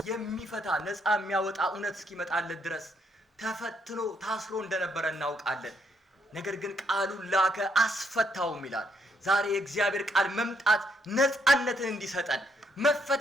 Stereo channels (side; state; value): both; normal; correlation 0.74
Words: የሚፈታ ነፃ የሚያወጣ እውነት እስኪመጣለት ድረስ ተፈትኖ ታስሮ እንደነበረ እናውቃለን። ነገር ግን ቃሉን ላከ አስፈታውም ይላል። ዛሬ የእግዚአብሔር ቃል መምጣት ነፃነትን እንዲሰጠን